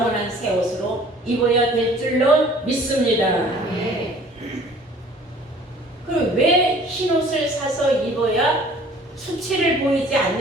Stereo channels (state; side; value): normal; both; correlation 0.51